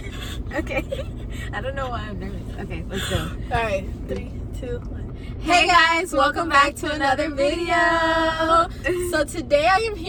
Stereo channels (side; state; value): both; identical; correlation 1.00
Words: Okay. I don't know why I'm nervous. Okay, let's go. Alright, 3, 2, 1. Hey guys, welcome back to another video. So today I am